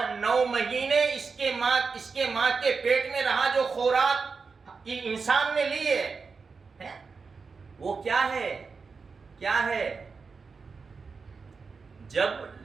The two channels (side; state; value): left; quieter; 4.9 dB